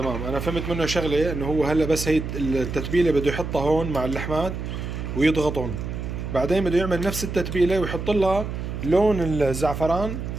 انا فهمت منه شغله انه هو هلا بس هي التتبيله بده يحطها هون مع اللحمات ويضغطهم، بعدين بده يعمل نفس التتبيله ويحط لها لون الزعفران.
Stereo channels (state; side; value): noise; right; hum, 6 dB below the sound